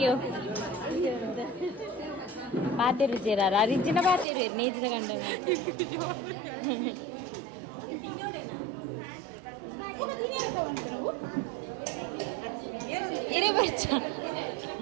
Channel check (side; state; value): left; drops out; at 4.2 s